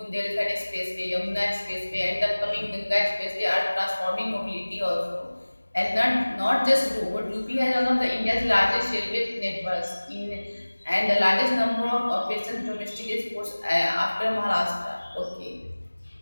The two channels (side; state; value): both; inverted; correlation -1.00